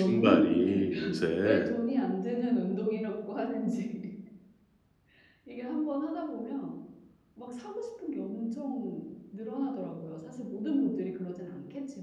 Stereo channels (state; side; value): identical; both; correlation 1.00